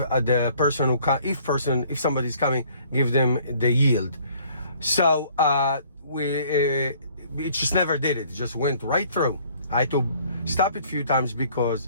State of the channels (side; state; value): both; inverted; correlation -0.58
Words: person if somebody's coming, give them the yield. So it just never did it. It just went right through. I had to stop it a few times